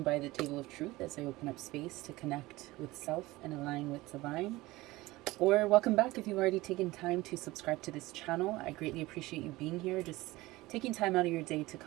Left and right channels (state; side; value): quieter; left; 19.6 dB